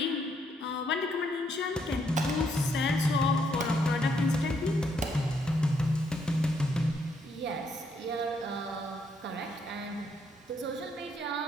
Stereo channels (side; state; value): both; normal; correlation 0.73